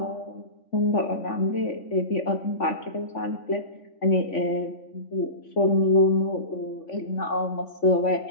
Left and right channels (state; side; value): late; right; 3.5 ms